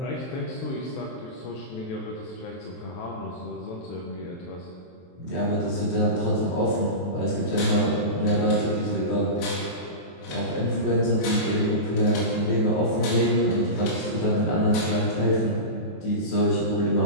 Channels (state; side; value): late; right; 23 ms